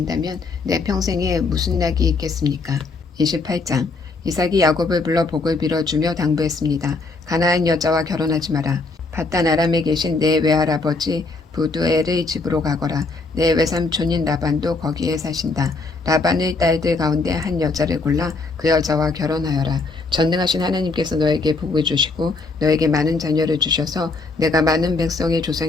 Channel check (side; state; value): right; quieter; 3.7 dB